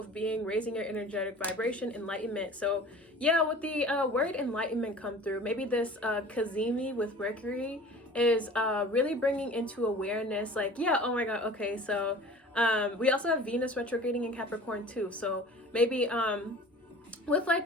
being, raising your energetic vibration, enlightenment. So yeah, with the word enlightenment come through, maybe this Cazimi with Mercury is really bringing into awareness, like, yeah, oh my god, okay, so we also have Venus retrograding in Capricorn too. So maybe with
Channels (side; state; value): both; normal; correlation 0.43